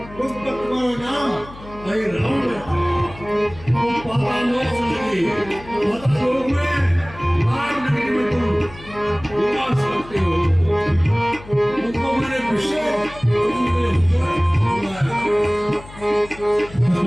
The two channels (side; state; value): left; noise; hum, 18 dB below the sound